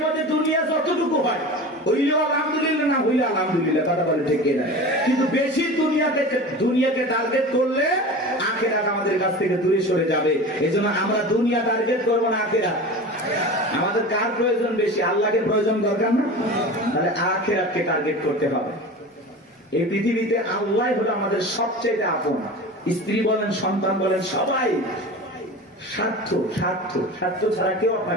মধ্যে দুনিয়া যতটুকু হয় হইলেও আলহামদুলিল্লাহ, না হইলে আলহামদুলিল্লাহ। কথা বলে ঠিক না? কিন্তু বেশি দুনিয়াকে টার্গেট করলে আখিরাত আমাদের কাছ থেকে দূরে সরে যাবে। এজন্য আমরা দুনিয়া টার্গেট করবো না, আখিরাত। আমাদের কার প্রয়োজন বেশি? আল্লাহকে প্রয়োজন দরকার না? তাহলে আখিরাতকে টার্গেট করতে হবে। এই পৃথিবীতে আল্লাহ হলো আমাদের সবচেয়ে আপন। স্ত্রী বলেন, সন্তান বলেন, সবাই স্বার্থ, স্বার্থ, স্বার্থ ছাড়া কেউ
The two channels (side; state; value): both; normal; correlation 0.33